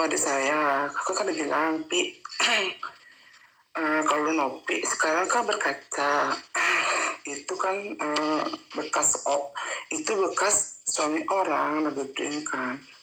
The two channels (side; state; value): both; identical; correlation 1.00